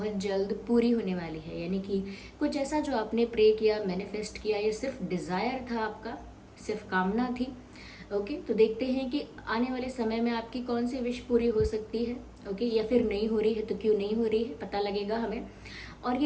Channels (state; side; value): identical; both; correlation 1.00